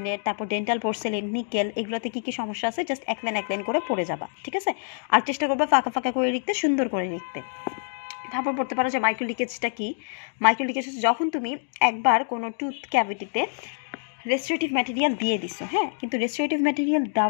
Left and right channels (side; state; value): right; silent; digital silence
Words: তারপর ডেন্টাল পোর্সেলিন, নিকেল, এগুলোতে কি কি সমস্যা আছে জাস্ট এক লাইন করে পড়ে যাবা, ঠিক আছে? আর চেষ্টা করবা ফাঁকা ফাঁকা করে লিখতে, সুন্দর করে লিখতে। তারপর পড়তে পারো যে মাইক্রো লিকেজটা কি। মাইক্রো লিকেজ যখন তুমি একবার কোনো টুথ ক্যাভিটিতে রেস্টোরেটিভ ম্যাটেরিয়াল দিয়ে দিছো, হ্যাঁ, কিন্তু রেস্টোরেটিভ ম্যাটেরিয়াল